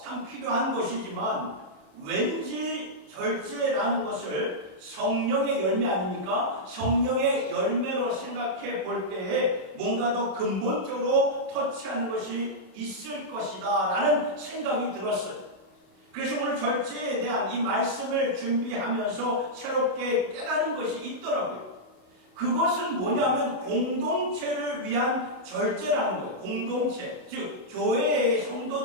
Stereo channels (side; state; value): left; late; 27 ms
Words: 참 필요한 것이지만 왠지 절제라는 것을 성령의 열매 아닙니까? 성령의 열매로 생각해 볼 때에 뭔가 더 근본적으로 터치하는 것이 있을 것이다 라는 생각이 들었어요. 그래서 오늘 절제에 대한 이 말씀을 준비하면서 새롭게 깨달은 것이 있더라고요. 그것은 뭐냐면 공동체를 위한 절제라는 거예요. 공동체, 즉 교회의